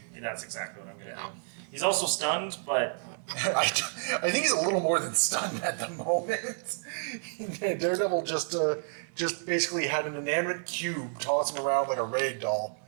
That's exactly what I'm going to do. He's also stunned, but... I think he's a little more than stunned at the moment. Daredevil just basically had an inanimate cube toss him around like a rag doll.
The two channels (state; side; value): silent; left; 58 dB below the other